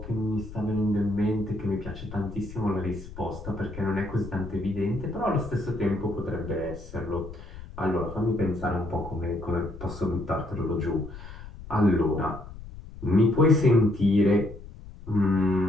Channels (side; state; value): left; noise; rumble, 14 dB below the sound